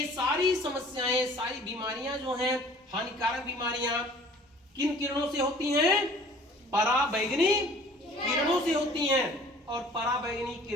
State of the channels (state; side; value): normal; both; correlation 0.50